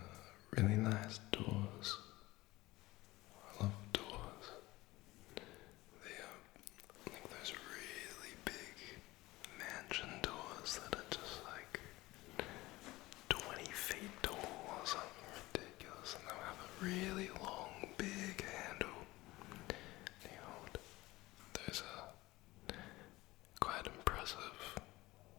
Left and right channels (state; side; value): quieter; right; 19.4 dB